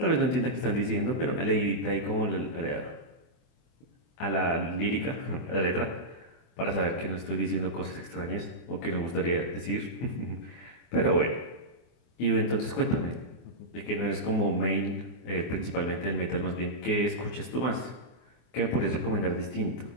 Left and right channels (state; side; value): late; right; 24 ms